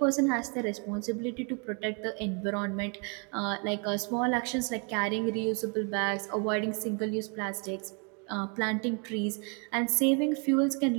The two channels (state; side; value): quieter; left; 36.4 dB